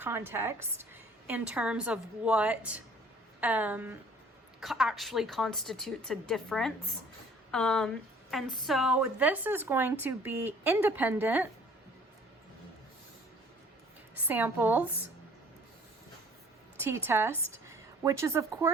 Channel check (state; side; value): normal; both; correlation 0.54